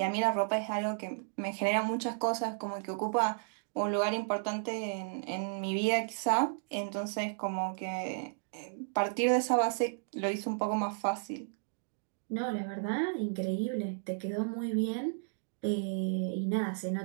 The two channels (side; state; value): left; silent; digital silence